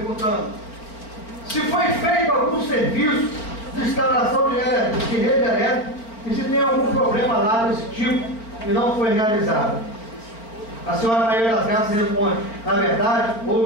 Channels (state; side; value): late; right; 4.4 ms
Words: se foi feito algum serviço de instalação de rede elétrica e se tem algum problema lá desse tipo e não foi realizado. A senhora Maria das Graças responde: na verdade,